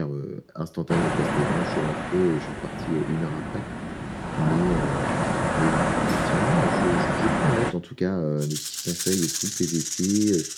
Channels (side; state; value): both; identical; correlation 1.00